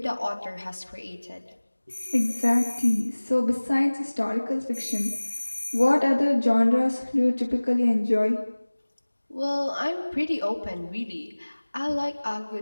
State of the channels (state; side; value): inverted; both; correlation -1.00